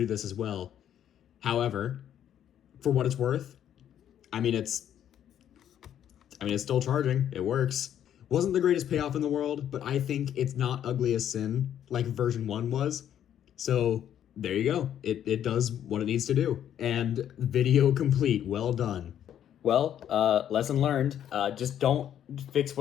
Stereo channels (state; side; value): quieter; right; 10.2 dB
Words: this as well. However, for what it's worth, I mean, it's still charging. It works. Wasn't the greatest payoff in the world, but I think it's not ugly as sin like version 1 was. So there you go. It does what it needs to do. And video complete. Well done. Well, lesson learned. Just don't fix